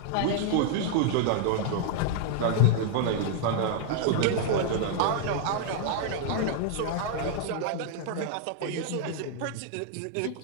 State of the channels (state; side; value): different; both; correlation -0.01